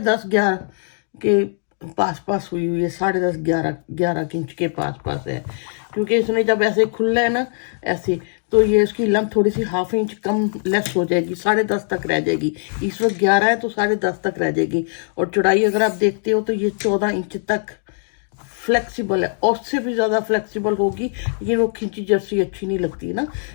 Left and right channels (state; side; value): silent; right; 65 dB below the other